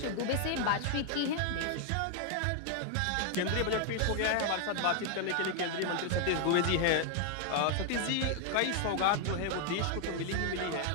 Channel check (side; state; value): both; different; correlation 0.00